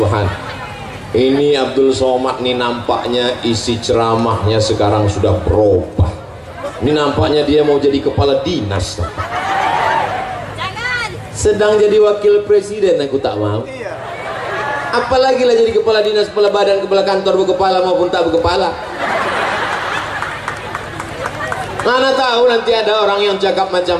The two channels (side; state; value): both; identical; correlation 1.00